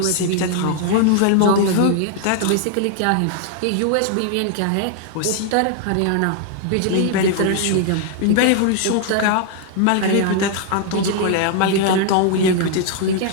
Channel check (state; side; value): different; both; correlation 0.00